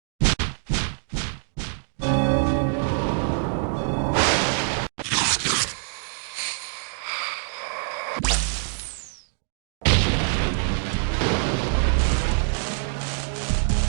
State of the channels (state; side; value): silent; left; digital silence